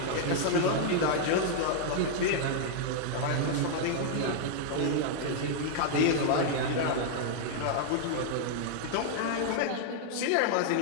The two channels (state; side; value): different; both; correlation -0.01